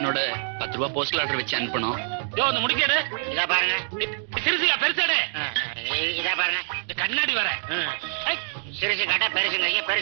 10 ரூபாய் போஸ்டல் ஆர்டர் வச்சு அனுப்பணும். இந்த முடிக்கேடு. இதா பாருங்க. சிறுசியா பெருசாடு. இதா பாருங்க. இந்த கண்ணாடி வர. சிறுசு கட்டா பெருசுங்க,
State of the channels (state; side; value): silent; left; digital silence